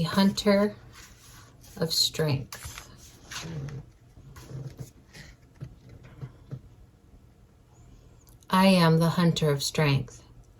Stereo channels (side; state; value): both; identical; correlation 1.00